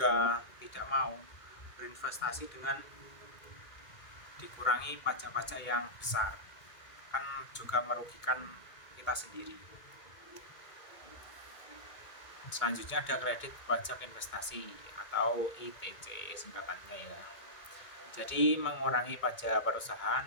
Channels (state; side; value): late; right; 2.2 ms